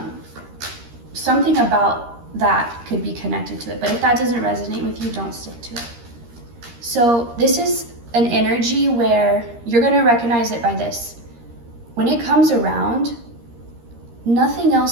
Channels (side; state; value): left; late; 13 ms